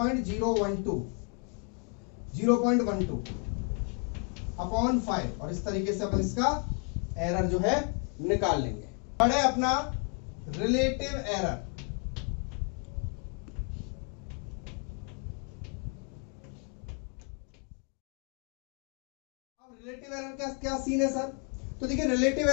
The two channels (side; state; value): right; quieter; 37.2 dB